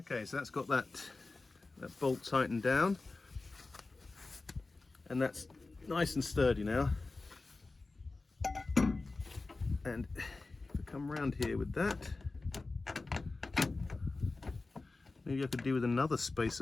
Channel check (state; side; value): quieter; right; 3.5 dB